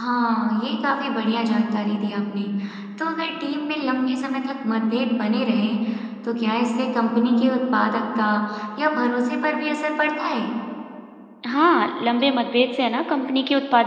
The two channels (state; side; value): identical; both; correlation 1.00